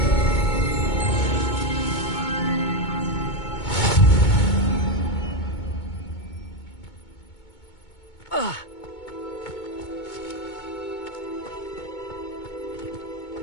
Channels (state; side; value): late; right; 2.2 ms